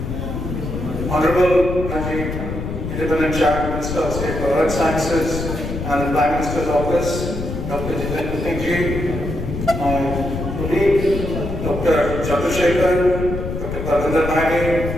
Honorable Managing Independent Chair, Minister of State for Earth Sciences and the Prime Minister's Office, Dr. Jitendra Singh ji, my colleagues, Dr. Chandrasekhar, Dr. Darbhanga,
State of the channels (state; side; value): noise; left; rumble, 5 dB below the sound